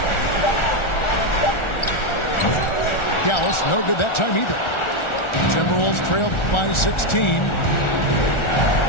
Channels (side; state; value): right; late; 1.4 ms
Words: Dallas, no good that time either. Timberwolves trailed by 16.